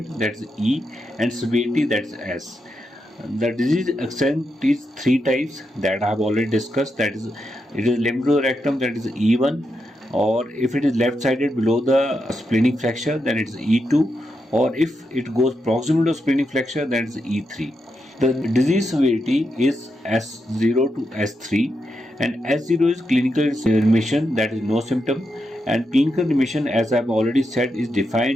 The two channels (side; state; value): both; normal; correlation 0.84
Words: that's E, and severity, that's S. The disease extent is three types that I have already discussed. That is, it is limb to the rectum, that is E1, or if it is left-sided below the splenic flexure, then it is E2, or if it goes proximal to splenic flexure, then it is E3. The disease severity is S0 to S3, and S0 is clinical remission, that is no symptom, and clinical remission, as I have already said, is